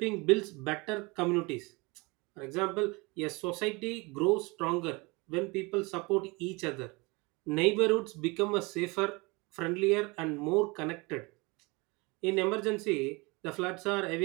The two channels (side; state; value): left; quieter; 26.3 dB